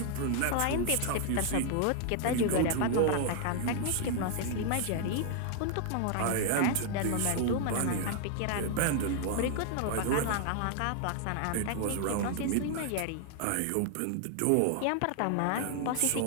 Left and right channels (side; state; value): both; different; correlation 0.00